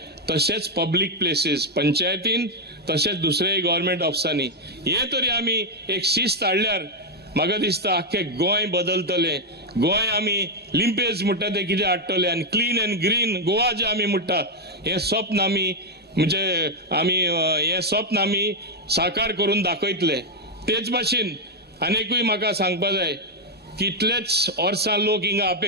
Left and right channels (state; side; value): normal; both; correlation 0.01